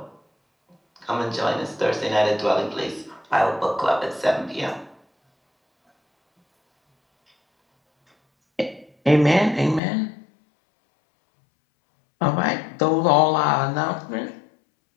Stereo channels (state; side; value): drops out; right; at 9.8 s